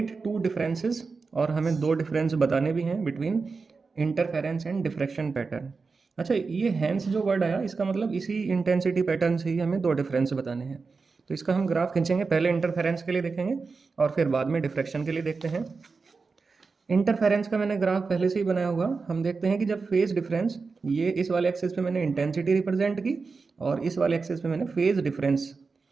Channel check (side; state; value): left; quieter; 4.5 dB